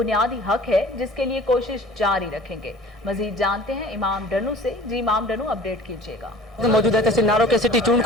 حق ہے جس کے لیے کوشش جاری رکھیں گے۔ مزید جانتے ہیں امام ڈنو سے۔ جی امام ڈنو، اپڈیٹ کیجیے گا۔ موجود ہے تحصیل ناروں کے سٹی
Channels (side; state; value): both; normal; correlation 0.45